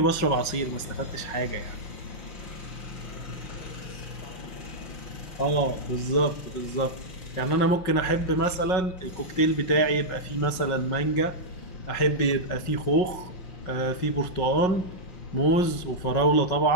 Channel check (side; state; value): right; late; 5.5 ms